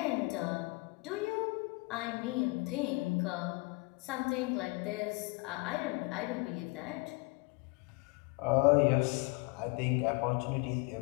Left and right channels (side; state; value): right; quieter; 28.0 dB